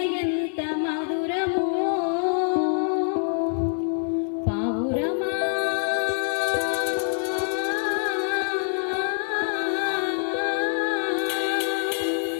ఎంత మధురమో, పావురమా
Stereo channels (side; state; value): right; silent; 62 dB below the other